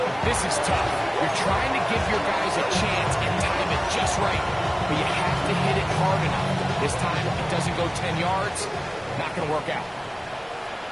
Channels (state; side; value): identical; both; correlation 1.00